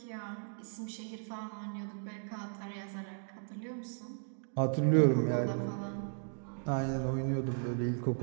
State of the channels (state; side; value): silent; left; digital silence